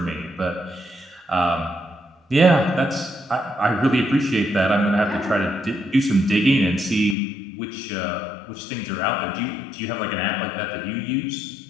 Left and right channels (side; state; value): right; drops out; at 7.2 s